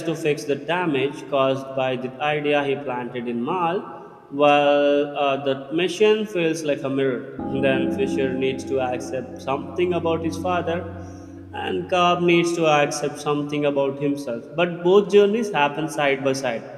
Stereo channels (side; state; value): both; identical; correlation 1.00